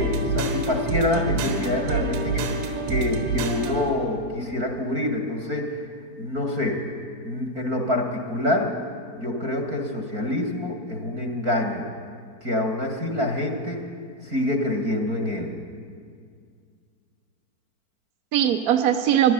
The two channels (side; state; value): left; late; 4.4 ms